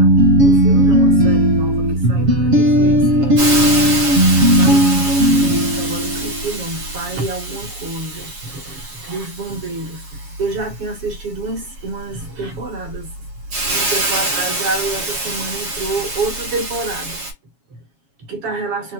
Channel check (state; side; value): late; left; 7.3 ms